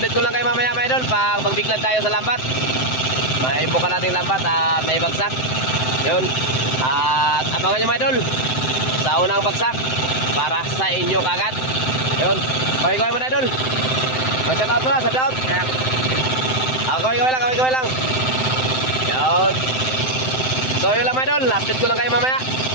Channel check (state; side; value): late; right; 7.8 ms